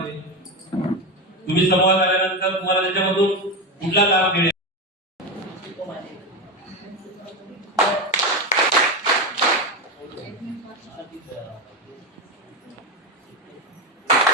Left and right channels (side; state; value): both; normal; correlation 0.16